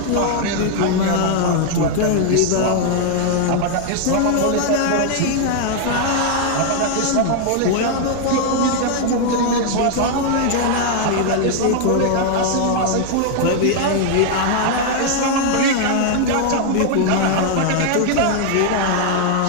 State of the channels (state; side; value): different; both; correlation 0.00